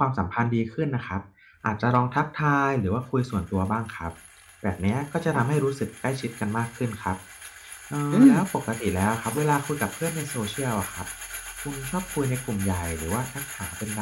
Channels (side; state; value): both; identical; correlation 1.00